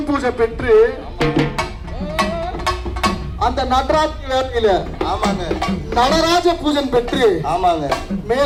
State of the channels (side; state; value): both; identical; correlation 1.00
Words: பூஜை பெற்று அந்த நடராத்திரி வேளையில நடராஜ பூஜை பெற்று